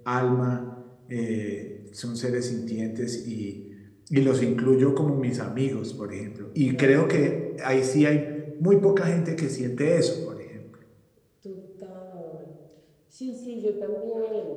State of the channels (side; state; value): both; identical; correlation 1.00